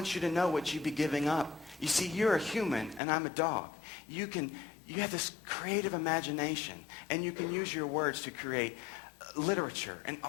you to know what you'd be giving up. You see, you're a human and I'm a dog. You have this creative imagination, and you can use your words to create literature and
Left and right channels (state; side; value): drops out; right; at 3.0 s